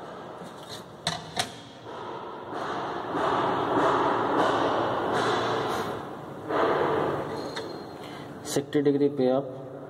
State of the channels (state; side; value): identical; both; correlation 1.00